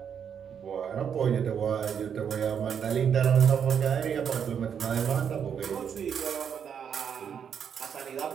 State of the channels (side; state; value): left; quieter; 7.8 dB